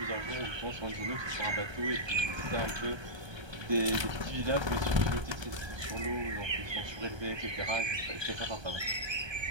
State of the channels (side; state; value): left; late; 1.3 ms